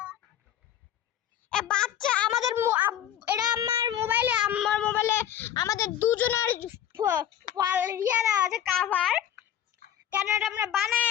এ বাচ্চা আমাদের এটা আমার মোবাইলে আমাদের দুজনের ইয়ে দেওয়া আছে কাভার। কেন এটা আমরা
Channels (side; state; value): right; quieter; 10.6 dB